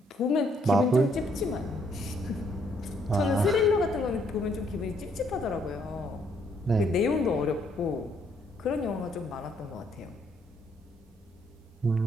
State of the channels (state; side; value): normal; both; correlation 0.70